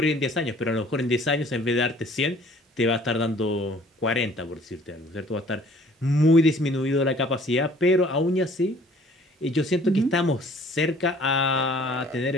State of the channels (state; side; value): normal; both; correlation 0.54